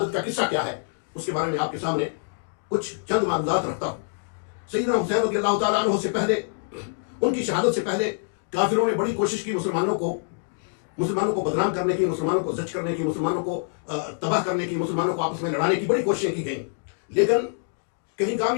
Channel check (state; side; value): silent; right; digital silence